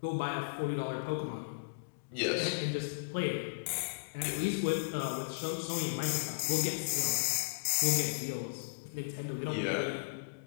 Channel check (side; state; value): right; quieter; 35.8 dB